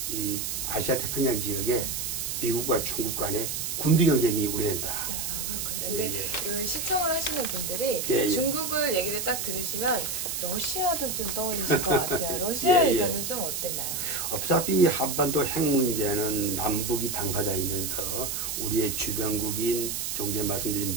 이 아시아 태평양 지역에 미국과 중국 간의 군비 경쟁이 우려된다. 근데 시청을 하시는 분들이 중국을 얘기를 딱 들으시면 러시아도 좀 떠오르실 것 같아요. 러시아 의견은 좀 어땠나요? 어차피 한반도 핵 문제는 남북이 당사자이면서 우리의 주변국인 좀 전에 말씀드린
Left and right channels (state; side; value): noise; right; hiss, 3 dB below the sound